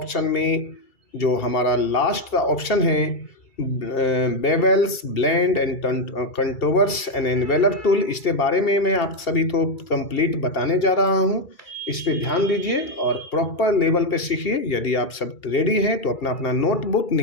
में जो हमारा लास्ट का ऑप्शन है bevels blend and contours and envelope tool, इसके बारे में मैं आप सभी को कंप्लीट बताने जा रहा हूं। इस पे ध्यान दीजिए और प्रॉपर लेवल पे सीखिए। यदि आप सब रेडी हैं तो अपना अपना नोटबुक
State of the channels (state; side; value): late; right; 2.3 ms